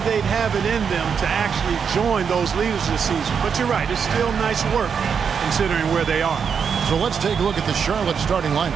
they'd have it in them to actually join those leaders this season. But you're right, it's still nice work considering where they are. So let's take a look at the Charlotte starting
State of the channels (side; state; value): left; quieter; 6.7 dB